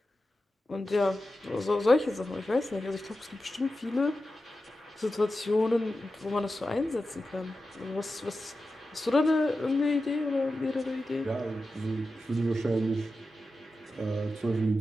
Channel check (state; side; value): normal; both; correlation 0.92